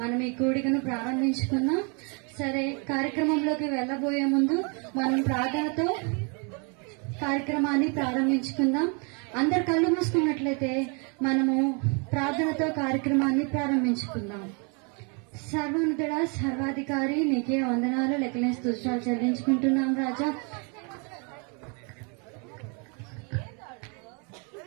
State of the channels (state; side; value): quieter; left; 35.0 dB